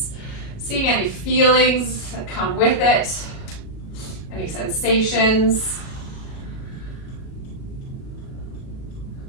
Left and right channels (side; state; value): right; late; 37 ms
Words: seeing any feelings that come with it, any sensations.